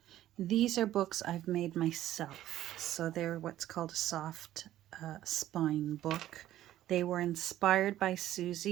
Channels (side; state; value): left; quieter; 13.3 dB